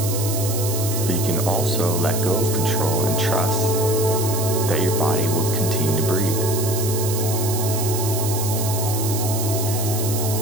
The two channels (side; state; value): right; noise; hiss, 5 dB below the sound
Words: But you can also let go of control and trust that your body will continue to breathe.